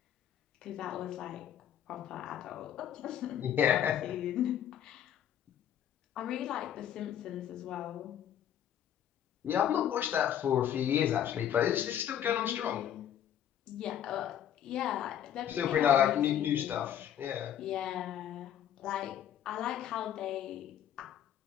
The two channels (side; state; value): right; quieter; 10.2 dB